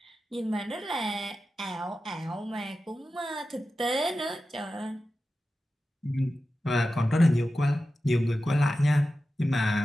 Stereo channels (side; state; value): both; normal; correlation 0.93